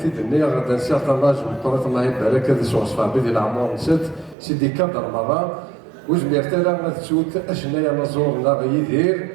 الدنيا غدا نسير طناج وطرات الله يبارك هذا سوغ صفابي ديال العمر نسات سيدي كادر مرة وجمير تالا غتسوت اشنايا نزورنا غيدير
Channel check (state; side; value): drops out; left; at 4.4 s